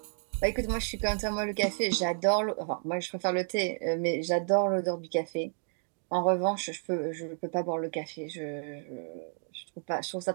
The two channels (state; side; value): silent; left; 57 dB below the other